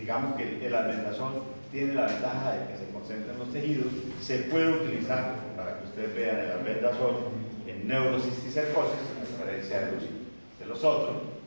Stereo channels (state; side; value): inverted; both; correlation -1.00